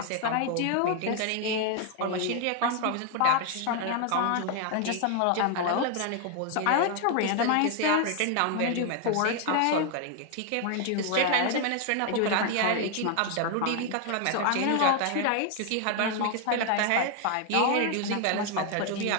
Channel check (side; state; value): both; different; correlation 0.00